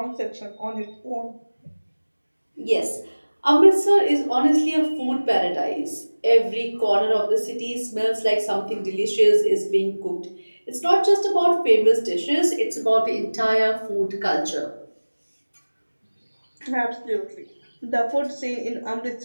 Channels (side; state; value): both; inverted; correlation -1.00